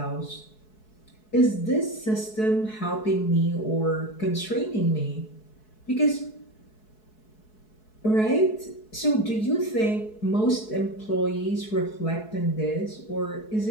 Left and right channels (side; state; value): right; late; 4.7 ms